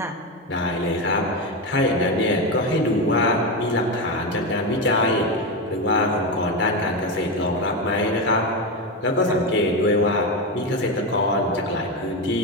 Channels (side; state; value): both; normal; correlation 0.14